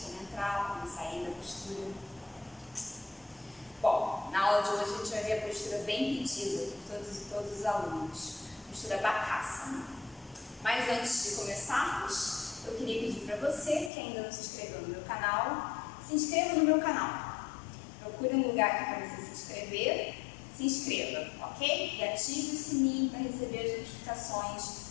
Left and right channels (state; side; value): drops out; right; at 13.9 s